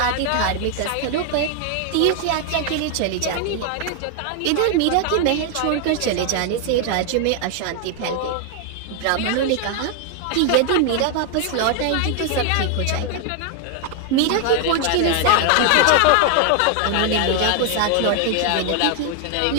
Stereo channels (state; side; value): different; both; correlation 0.00